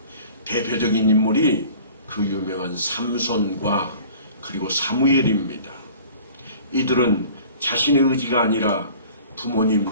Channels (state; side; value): inverted; both; correlation -0.46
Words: 대표적인 인물이 그 유명한 삼손과 그리고 사무엘입니다. 이들은 자신의 의지가 아니라 부모님